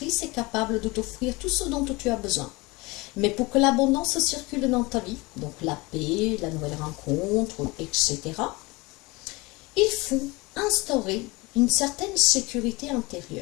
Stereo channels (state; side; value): quieter; right; 23.9 dB